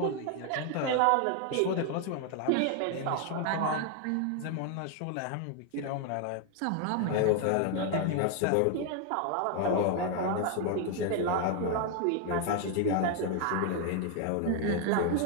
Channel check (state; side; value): different; both; correlation 0.01